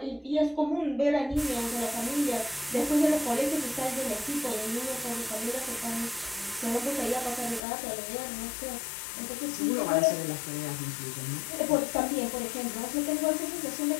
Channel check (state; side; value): drops out; right; at 7.6 s